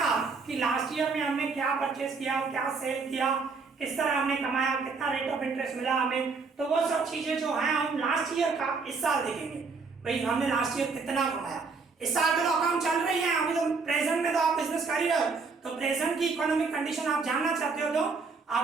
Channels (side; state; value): left; quieter; 4.6 dB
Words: कि लास्ट ईयर में हमने क्या परचेस किया, क्या सेल किया, किस तरह हमने कमाया, कितना रेट ऑफ इंटरेस्ट मिला हमें। तो वो सब चीजें जो हैं हम लास्ट ईयर का इस साल देखेंगे, भाई हमने लास्ट ईयर कितना कमाया। इस साल तो अकाउंट चल रही है, अभी तो प्रेजेंट में तो आप बिजनेस कर ही रहे हो, तो प्रेजेंट की इकोनॉमिक कंडीशन आप जानना चाहते हो तो